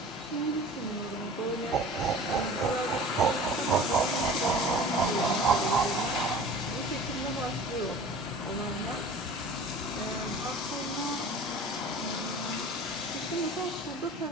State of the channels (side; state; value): both; normal; correlation 0.41